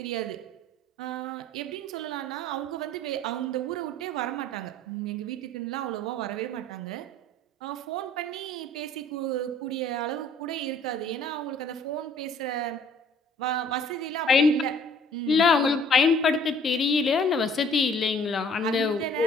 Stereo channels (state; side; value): normal; both; correlation 0.55